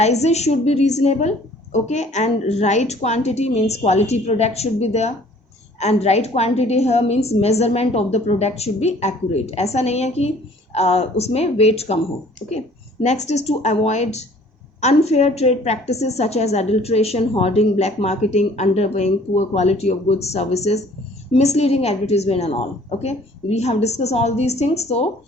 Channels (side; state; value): both; normal; correlation 0.54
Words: should be reasonable, okay, and right quantity means quality product should be there. And right quantity here means measurement of the product should be accurate. ऐसा नहीं है कि उसमें weight कम हो. Okay. Next is to avoid unfair trade practices such as adulteration, hoarding, black marketing, underpaying, poor quality of goods, services, misleading advertisement and all. Okay, we have discussed all these things, so